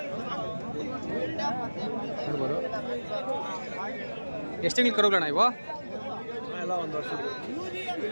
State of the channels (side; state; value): both; inverted; correlation -1.00